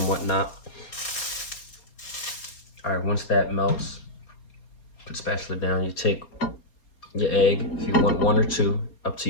whatnot. All right, once that melts, put the spatula down. You take your egg, if you want one or two, up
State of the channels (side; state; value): right; late; 4.2 ms